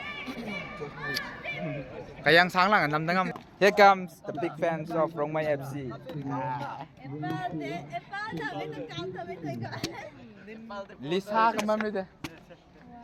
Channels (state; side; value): identical; both; correlation 1.00